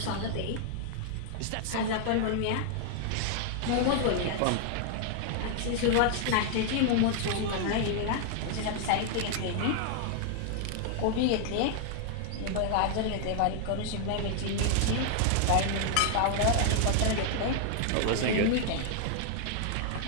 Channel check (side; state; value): both; different; correlation 0.00